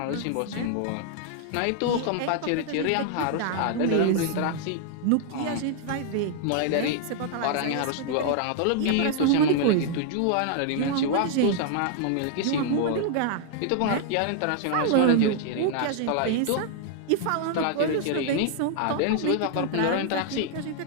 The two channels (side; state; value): both; different; correlation 0.00